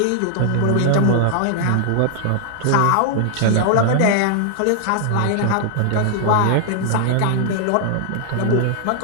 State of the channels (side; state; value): both; different; correlation 0.00